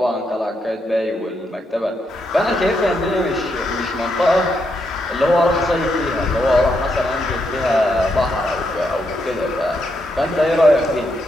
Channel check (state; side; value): normal; both; correlation 0.80